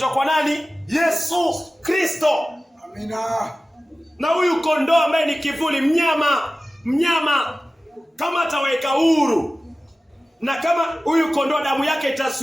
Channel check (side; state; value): both; normal; correlation 0.96